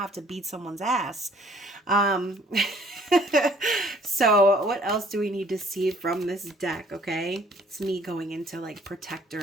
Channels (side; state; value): both; normal; correlation 0.58